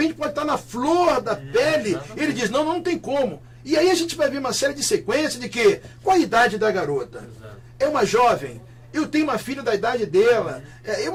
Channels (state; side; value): identical; both; correlation 1.00